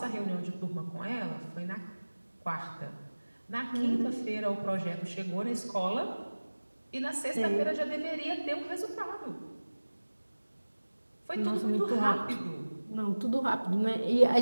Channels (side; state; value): both; inverted; correlation -1.00